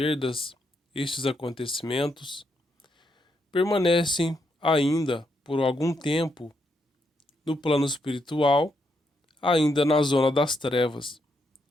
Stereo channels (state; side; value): normal; both; correlation 0.79